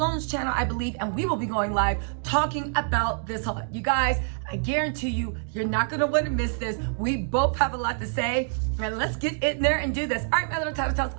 channel, I believe, and we will be going live talking about this a lot. You guys, I guarantee you, you're not going to want to miss this. We both have a lot to say. And let's get in there and do this. All right, my little Tattle Tells.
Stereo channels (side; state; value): left; silent; 61 dB below the other